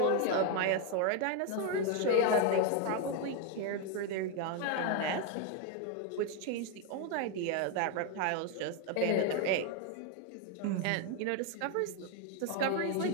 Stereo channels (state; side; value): different; both; correlation 0.01